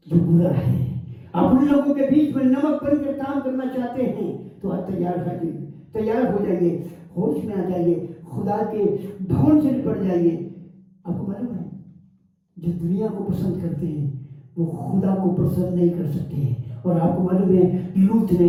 जो बुरा है? आप उन लोगों के बीच में नमक बनकर काम करना चाहते हैं तो आप तैयार हो जाइए, होश में आ जाइए, खुदा के भवन से निपट जाइए। आपको मालूम है, जो दुनिया को पसंद करते हैं वो खुदा को पसंद नहीं कर सकते हैं। और आपको मालूम है, लूत ने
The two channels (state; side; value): identical; both; correlation 1.00